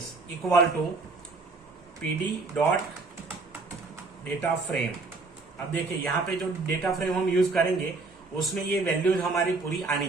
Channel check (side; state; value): left; quieter; 3.8 dB